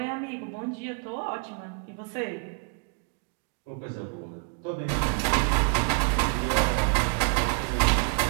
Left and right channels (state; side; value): quieter; left; 39.9 dB